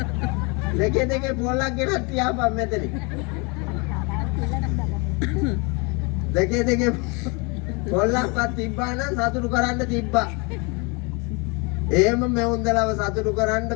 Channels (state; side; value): quieter; right; 30.3 dB